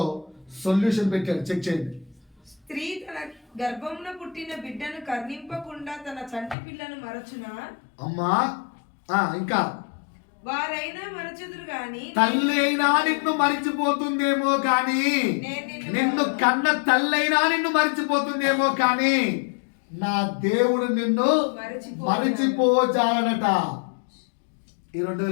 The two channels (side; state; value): right; drops out; at 6.6 s